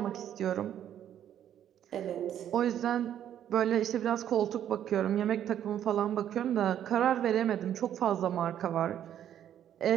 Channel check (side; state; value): left; quieter; 10.4 dB